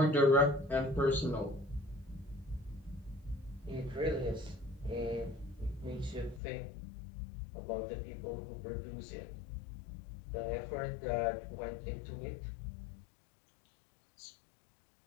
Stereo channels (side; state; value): right; drops out; at 6.4 s